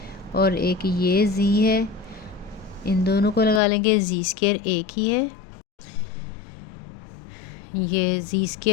और एक ये जी है, इन दोनों को लगा लेंगे, जी स्क्वायर एक ही है, ये जी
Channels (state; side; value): drops out; right; at 3.6 s